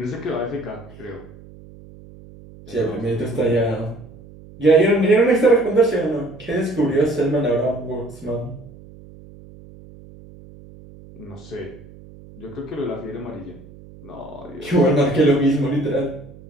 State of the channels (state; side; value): noise; right; hum, 20 dB below the sound